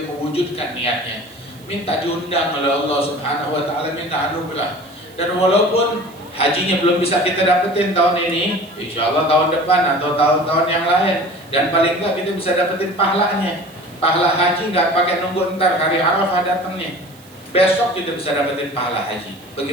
mewujudkan niatnya. Minta diundang oleh Allah Subhanahu Wa Ta'ala, minta anugerah. Dan walaupun hajinya belum bisa kita dapetin tahun ini, insya Allah tahun depan atau tahun-tahun yang lain. Dan paling enggak kita bisa dapetin pahalanya. Pahala haji nggak pakai nunggu ntar hari Arafah datangnya. Besok kita bisa dapetin pahala haji.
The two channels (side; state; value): right; noise; hiss, 26 dB below the sound